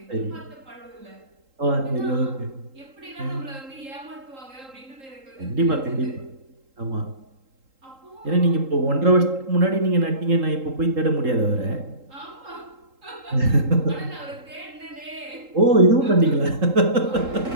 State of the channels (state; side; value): late; left; 3.8 ms